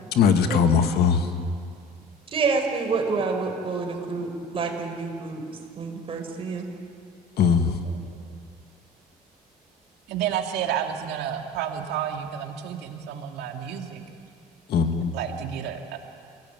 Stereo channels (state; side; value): normal; both; correlation 0.37